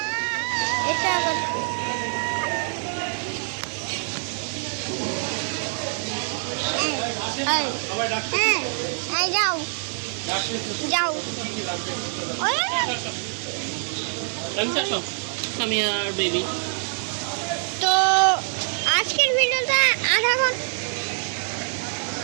এটা আবার কি? যাও যাও, আমি আর বেবি। তো আজকের ভিডিওটা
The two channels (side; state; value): left; silent; digital silence